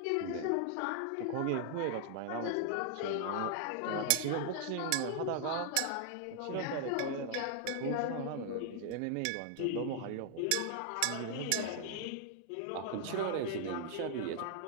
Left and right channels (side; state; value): both; different; correlation 0.00